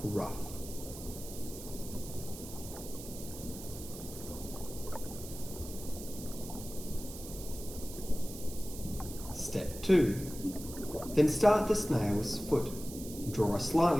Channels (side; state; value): right; noise; hiss, 12 dB below the sound